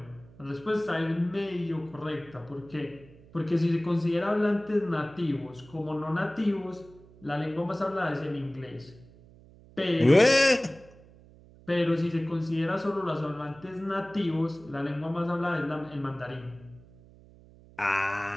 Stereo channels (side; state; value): right; noise; hum, 23 dB below the sound